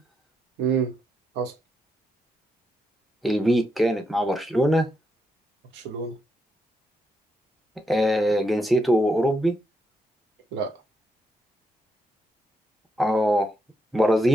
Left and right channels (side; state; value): both; normal; correlation 0.81